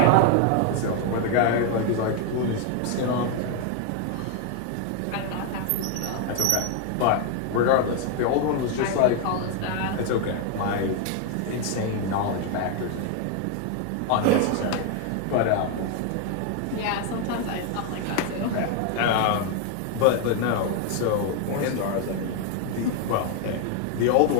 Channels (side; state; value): both; different; correlation 0.01